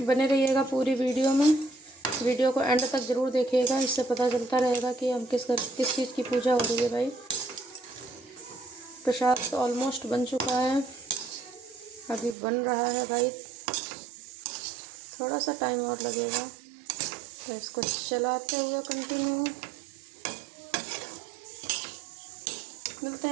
बने रहिएगा पूरी वीडियो में, वीडियो को एंड तक ज़रूर देखिएगा, इससे पता चलता रहेगा कि हम किस चीज़ की पूजा हो रही है भाई। प्रसाद तो ऑलमोस्ट बन चुका है, अभी बन रहा है भाई, थोड़ा सा टाइम और लगेगा। तो इसको चलाते हुए कंटिन्यू मिलते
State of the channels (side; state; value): left; drops out; at 12.4 s